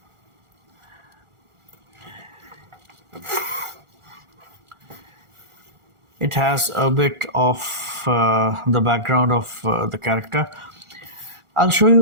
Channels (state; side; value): late; left; 1.4 ms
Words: It has a bit of the background of the character. I'll show